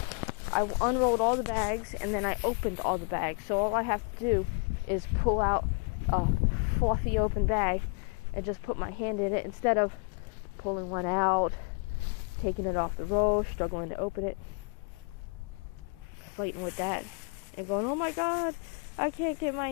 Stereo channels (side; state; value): right; quieter; 33.0 dB